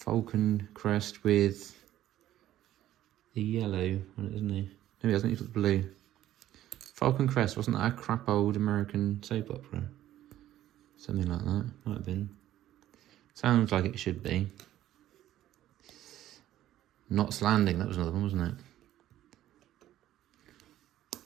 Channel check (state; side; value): quieter; left; 13.2 dB